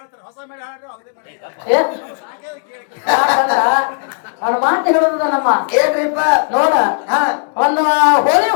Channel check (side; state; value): right; silent; 59 dB below the other